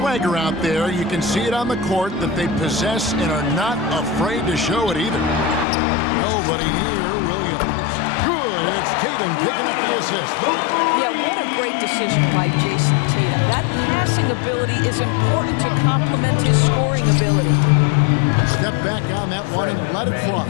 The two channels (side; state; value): right; drops out; at 5.7 s